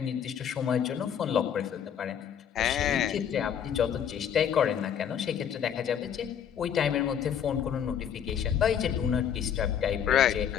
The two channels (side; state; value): right; quieter; 8.6 dB